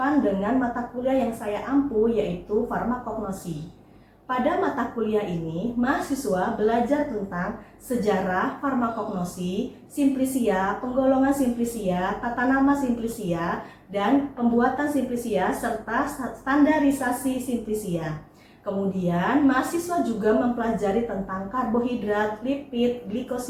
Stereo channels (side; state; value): both; identical; correlation 1.00